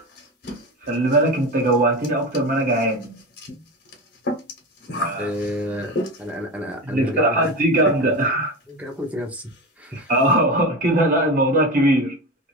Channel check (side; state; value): both; normal; correlation 0.24